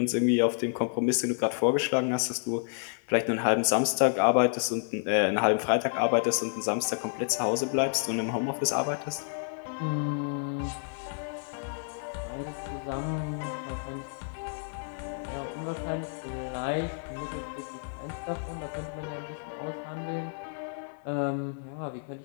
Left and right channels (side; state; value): right; silent; digital silence